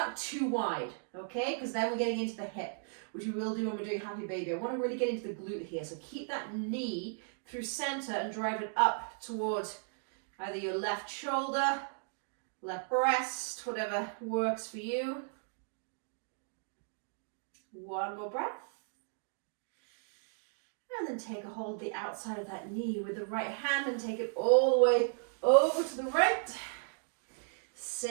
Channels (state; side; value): silent; left; digital silence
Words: too wide, okay? Because then we're getting into the hip, which we will do when we're doing happy baby. I want to really get into the glute here. So keep that knee through center and drive it up towards either your left shoulder, left breast, whatever works for you. One more breath. And then take a hold of the outside of that knee with the right hand and take it all the way over to the right.